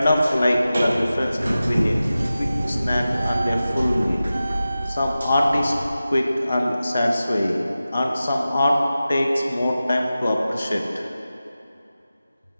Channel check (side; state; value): both; inverted; correlation -0.94